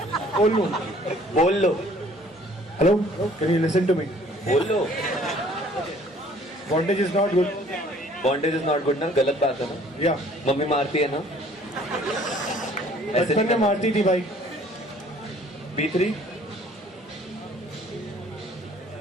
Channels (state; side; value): normal; both; correlation 0.56